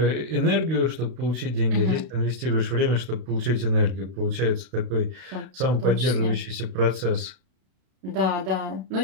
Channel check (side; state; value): left; late; 32 ms